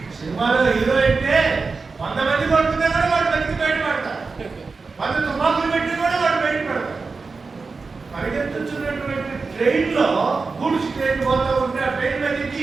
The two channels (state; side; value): quieter; left; 4.3 dB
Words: సినిమాలో హీరో అంటే 100 మంది కొడుతున్నా కూడా వాడు బతికి బయటపడతారు. 100 తుపాకులు పెట్టి కూడా వాడు బయటపడతారు. పరిగెత్తున్నటువంటి ట్రైన్ లో గూడ్స్ ట్రైన్ పోతా ఉంటే ఆ ట్రైన్ మీద ఎక్కి